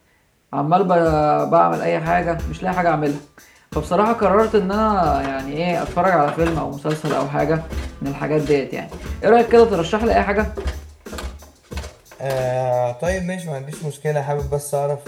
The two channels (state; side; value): identical; both; correlation 1.00